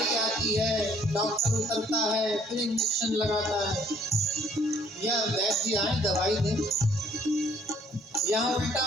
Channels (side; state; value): both; normal; correlation 0.62